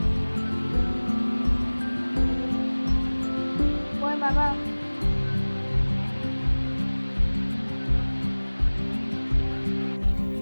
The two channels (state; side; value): inverted; both; correlation -1.00